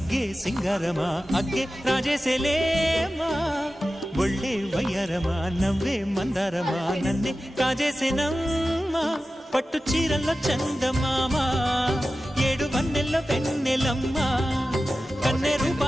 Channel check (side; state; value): both; normal; correlation 0.94